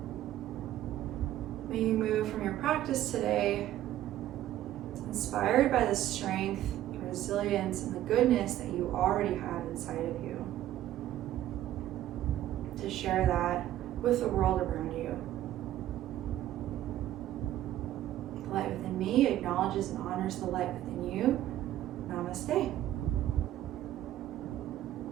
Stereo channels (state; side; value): quieter; left; 13.1 dB